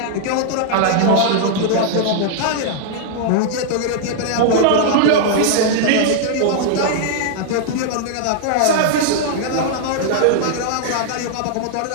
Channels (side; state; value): both; different; correlation -0.01